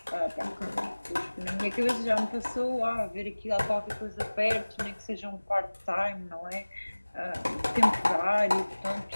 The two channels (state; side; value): inverted; both; correlation -1.00